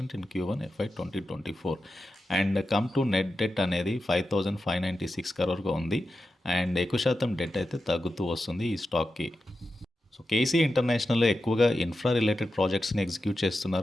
in Q1 FY 2024. And come to net debt అనేది 5,596 crore ఉంది. అండ్ ఎక్కువ శాతం డెట్ అయితే తగ్గుతూ వస్తుంది ఈ స్టాక్కి. సో కేసీ ఇంటర్నేషనల్లో ఎక్కువగా ఇన్ఫ్రా రిలేటెడ్ ప్రాజెక్ట్స్ని ఎగ్జిక్యూట్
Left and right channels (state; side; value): normal; both; correlation 0.90